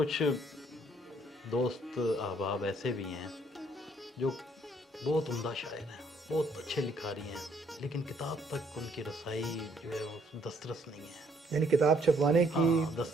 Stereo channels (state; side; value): normal; both; correlation 0.66